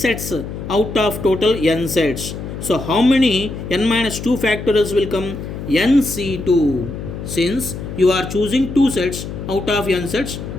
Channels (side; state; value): left; noise; hum, 8 dB below the sound